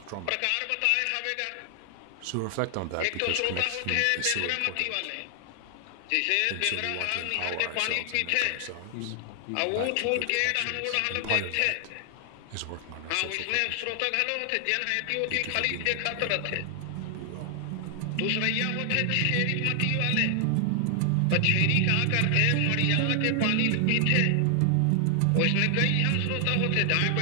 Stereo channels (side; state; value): both; different; correlation 0.00